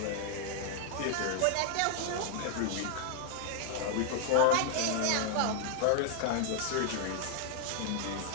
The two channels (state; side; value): different; both; correlation -0.01